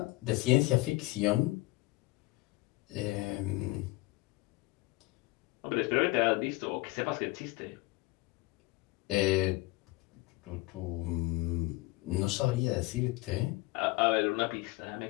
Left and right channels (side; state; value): right; quieter; 21.7 dB